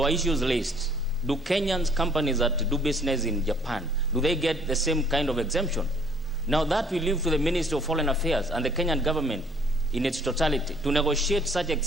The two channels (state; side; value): normal; both; correlation 0.59